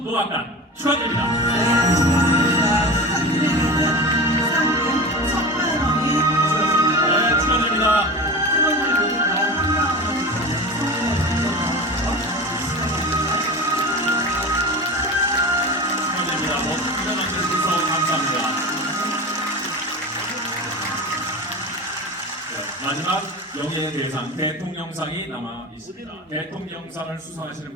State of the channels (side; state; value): both; normal; correlation 0.30